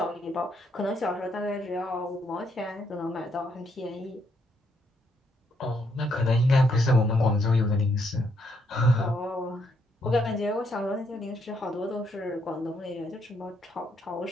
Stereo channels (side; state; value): both; normal; correlation 0.74